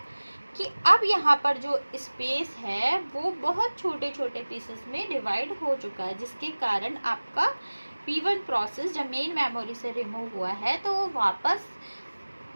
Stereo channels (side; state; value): both; inverted; correlation -1.00